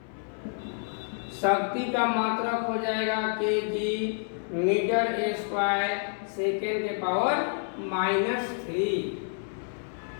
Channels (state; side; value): silent; right; 59 dB below the other